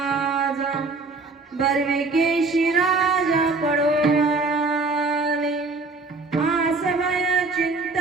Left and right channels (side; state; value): left; quieter; 3.7 dB